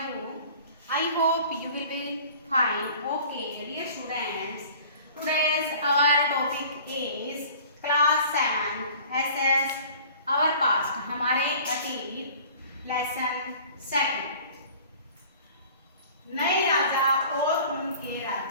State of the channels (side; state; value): both; inverted; correlation -0.47